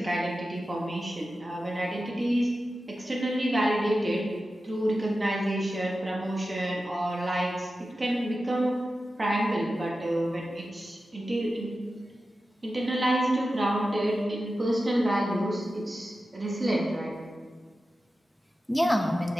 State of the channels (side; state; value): both; normal; correlation 0.93